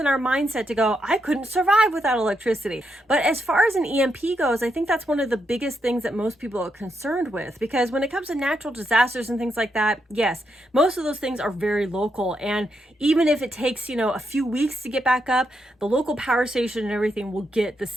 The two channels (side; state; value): both; normal; correlation 0.81